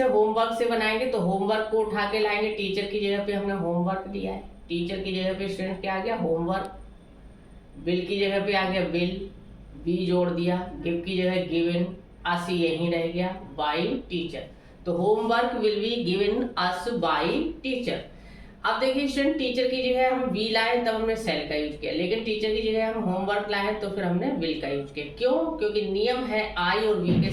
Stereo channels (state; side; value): identical; both; correlation 1.00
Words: होमवर्क से बनाएंगे तो होमवर्क को उठा के लाएंगे, टीचर की जगह पे हमने होमवर्क लिया है, टीचर की जगह पे स्टूडेंट क्या आ गया होमवर्क, बिल की जगह पे आ गया बिल, बी जोड़ दिया, गिव की जगह गिवन, अस यहीं रह गया बाई टीचर। तो homework will be given us by teacher. अब देखिए स्टूडेंट, टीचर की जगह हम वी लाए तब हमने सेल का यूज किया, लेकिन टीचर की जगह हम होमवर्क लाए तो फिर हमने बिल का यूज किया। क्यों? क्योंकि नियम है आई और वी के